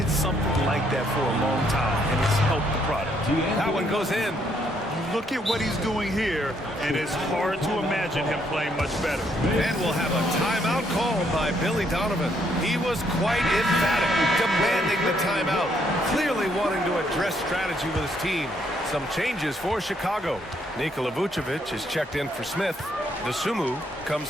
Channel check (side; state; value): both; normal; correlation 0.71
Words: something like that for a long time, and it's helped the product. That one goes in. You look at what he's doing here, and it's hard to imagine him playing much better. And we'll have a timeout called by Billy Donovan. He was quite emphatic, demanding the timeout, clearly wanting to address strategy with his team. Some changes for Chicago. Nikola Vucevic is checked in for Smith. Dosunmu